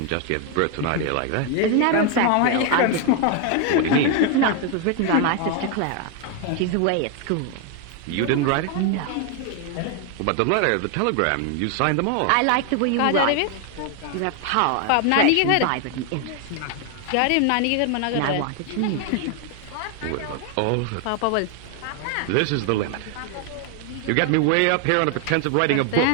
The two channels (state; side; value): different; both; correlation 0.01